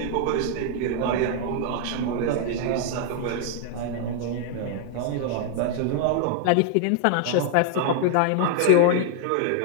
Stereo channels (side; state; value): both; different; correlation 0.00